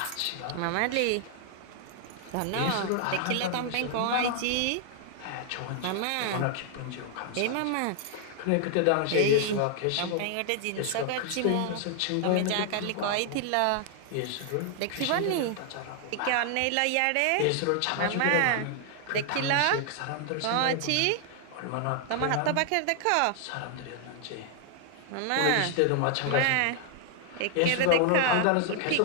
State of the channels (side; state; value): both; different; correlation 0.00